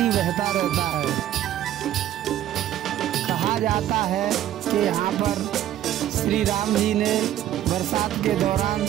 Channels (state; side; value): quieter; left; 12.2 dB